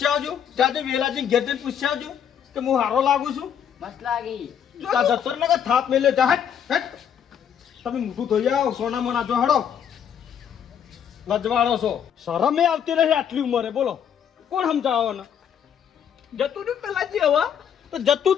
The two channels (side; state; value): right; quieter; 8.6 dB